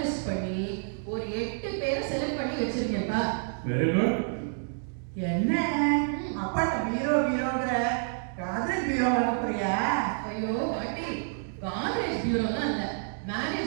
பண்ணி ஒரு 8 பேரை செலக்ட் பண்ணி வச்சிருக்கேன்ப்பா. Very good. என்ன அப்பாட்ட பீரோங்கிற காதல் பீரோ வாங்க போறியா? ஐயோ பாட்டி, காலேஜ் பியூரோலாம் இல்ல,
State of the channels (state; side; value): silent; left; digital silence